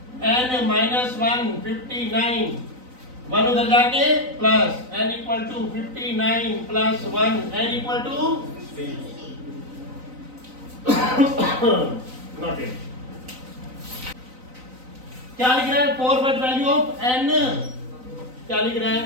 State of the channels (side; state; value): left; late; 3.9 ms